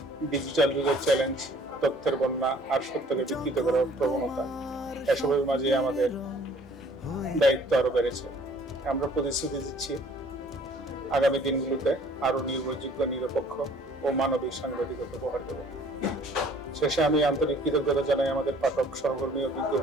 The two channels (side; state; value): both; normal; correlation 0.55